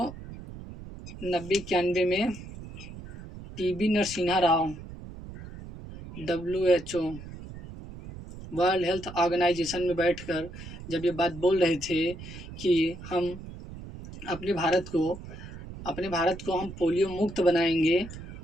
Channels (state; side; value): noise; right; rumble, 13 dB below the sound